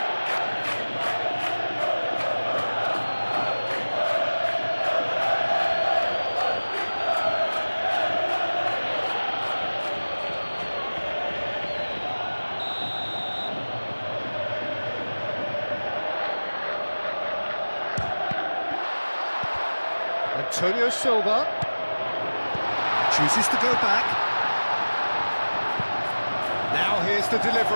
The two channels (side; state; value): both; inverted; correlation -1.00